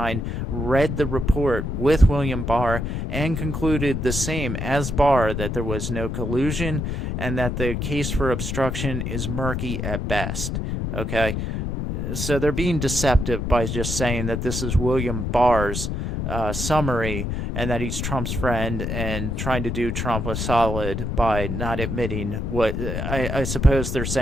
read the report with William Barr and concluded the same as Barr, that there was no collusion and that the case for obstruction is murky at best. Okay? So they're being deceptive by just saying that this is William Barr's summary, and that he's Trump's friend and trying to do Trump a solid by not admitting what I suppose they're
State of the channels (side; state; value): left; noise; rumble, 2 dB below the sound